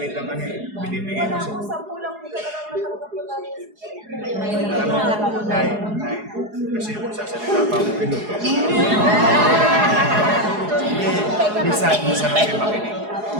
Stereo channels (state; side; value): late; left; 4.8 ms